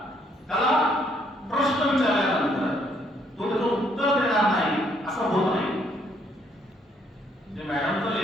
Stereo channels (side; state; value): both; normal; correlation 0.69